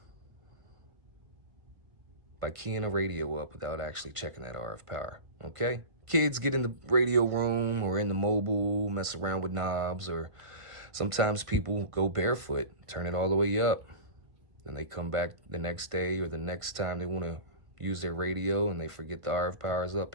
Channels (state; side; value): late; left; 1.5 ms